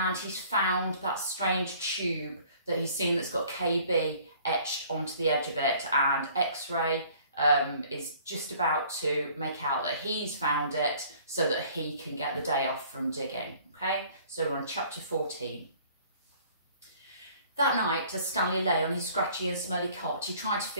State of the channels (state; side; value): inverted; both; correlation -0.54